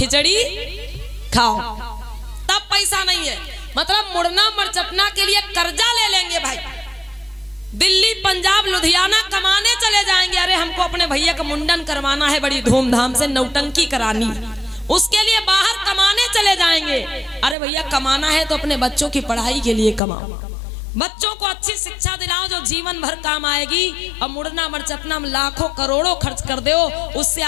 खाओ, तब पैसा नहीं है। मतलब मुड़ना मरचटना के लिए कर्जा ले लेंगे भाई, दिल्ली पंजाब लुधियाना कमाने चले जाएंगे। अरे हमको अपने भैया का मुंडन करवाना है, बड़ी धूमधाम से नौटंकी करानी, उसके लिए बाहर कमाने चले जाएंगे। अरे भैया कमाना है तो अपने बच्चों की पढ़ाई के लिए कमाओ, बच्चों को अच्छी शिक्षा दिलाओ जो जीवन भर काम आएगी। और मुड़ना मरचटना में लाखों करोड़ों खर्च कर दो, उससे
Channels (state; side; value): drops out; right; at 20.0 s